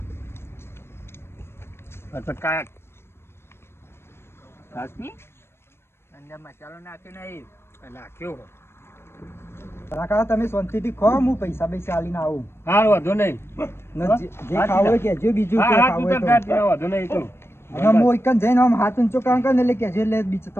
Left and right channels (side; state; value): right; late; 0.12 ms